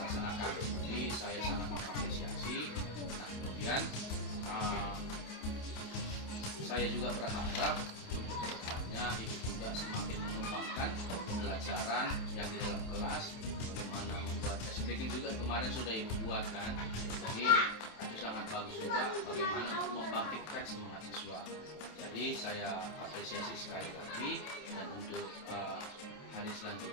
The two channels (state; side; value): late; right; 27 ms